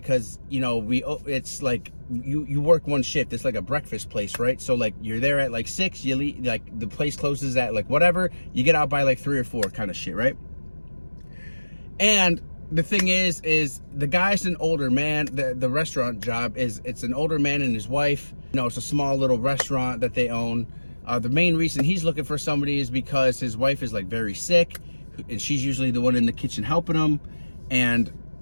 you know, it's like you work one shift. It's like a breakfast place, right? So like you're there at like 6, you leave, like the place closes at like whatever, you get out by like 3 or 4 kind of shit, right? And the thing is the guy's an older man. The restaurant job it's an older man and his wife. You know, it's a small little restaurant that they own. The main reason he's looking for somebody is because his wife is like very sick, and she's usually the one in the kitchen helping him. And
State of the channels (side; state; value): both; inverted; correlation -1.00